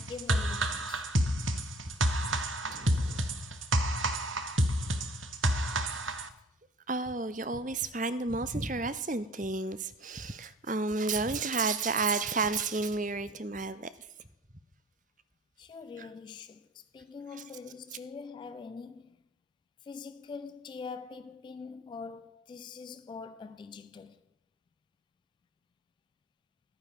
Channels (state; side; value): normal; both; correlation 0.50